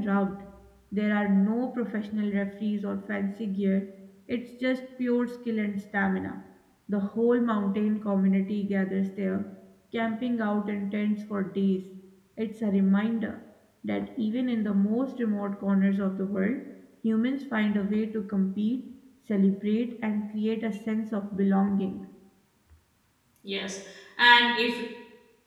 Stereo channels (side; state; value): both; identical; correlation 1.00